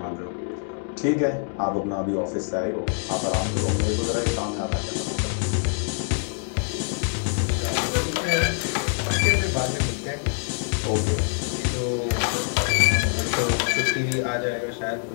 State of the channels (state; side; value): silent; right; 55 dB below the other